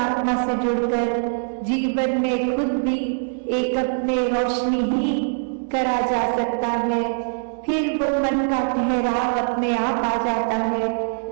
से जुड़कर जीवन में खुद भी एक अपने रोशनी ही करा जा सकता है, फिर वो मन का ठहराव अपने आप आ जाता है।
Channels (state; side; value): silent; left; 64 dB below the other